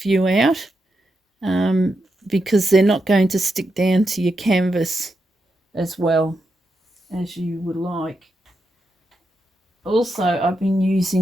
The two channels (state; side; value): normal; both; correlation 0.85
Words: out because they're not going to stick down to your canvas as well as you would like. Also, I've been